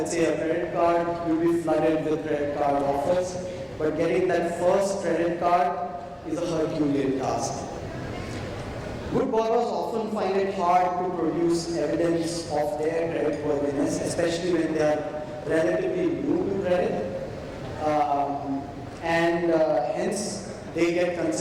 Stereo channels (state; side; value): identical; both; correlation 1.00